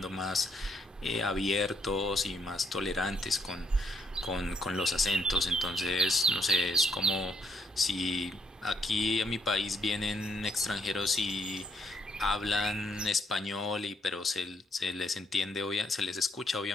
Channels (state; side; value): normal; both; correlation 0.73